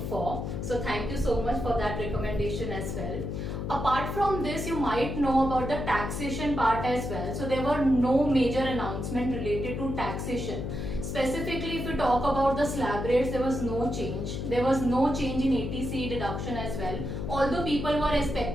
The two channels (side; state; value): left; noise; hum, 4 dB below the sound